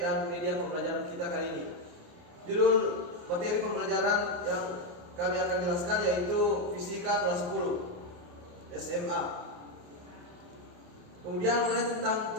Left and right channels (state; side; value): late; left; 28 ms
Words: dan media pembelajaran kita kali ini. Judul materi pembelajaran yang kami akan jelaskan yaitu Fisika kelas 10 SMA. Kemudian mengenai tentang